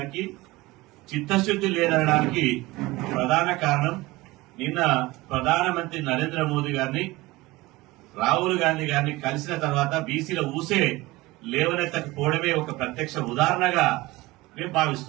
చిత్తశుద్ది లేదనడానికి ప్రధాన కారణం నిన్న ప్రధానమంత్రి నరేంద్ర మోదీ గారిని, రాహుల్ గాంధీ గారిని కలిసిన తర్వాత బీసీల ఊసే లేవనెత్తకపోవడమే ఒక ప్రత్యక్ష ఉదాహరణగా మేము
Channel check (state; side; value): quieter; left; 20.4 dB